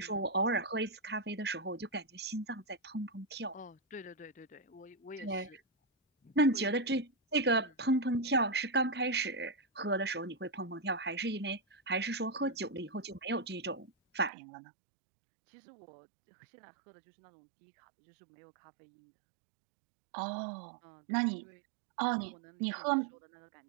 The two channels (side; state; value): left; drops out; at 14.3 s